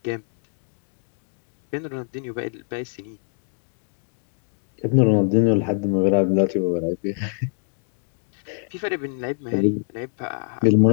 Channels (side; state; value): right; silent; digital silence